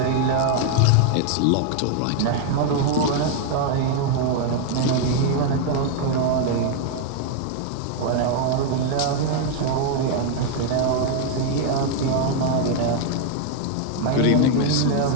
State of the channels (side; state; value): both; different; correlation 0.01